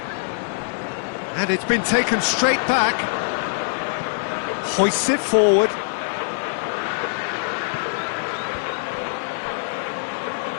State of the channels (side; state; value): right; silent; 63 dB below the other